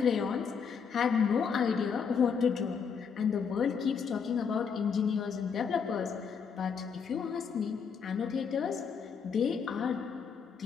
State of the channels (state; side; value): quieter; right; 6.3 dB